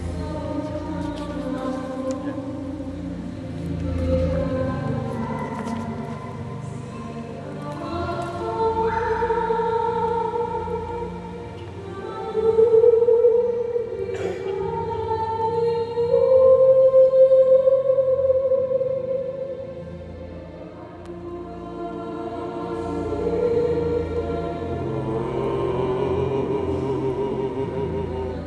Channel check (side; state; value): both; identical; correlation 1.00